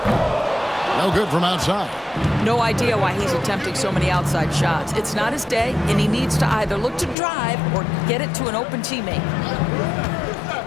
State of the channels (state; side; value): drops out; right; at 7.2 s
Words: No good from outside. No idea why he's attempting so many outside shots. It's not his day, and he needs to either look to drive or get it to an open teammate.